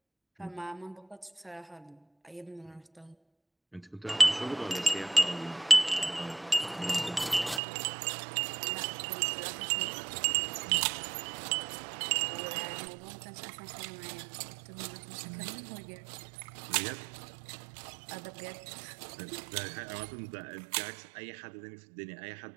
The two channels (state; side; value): drops out; left; at 7.6 s